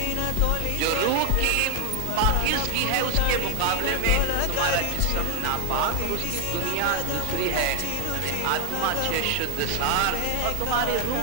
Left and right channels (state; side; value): different; both; correlation 0.00